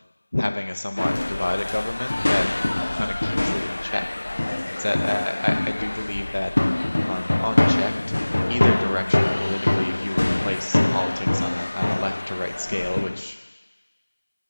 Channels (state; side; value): inverted; both; correlation -1.00